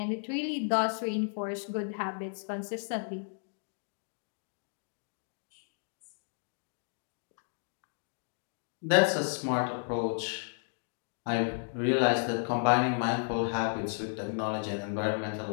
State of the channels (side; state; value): right; silent; digital silence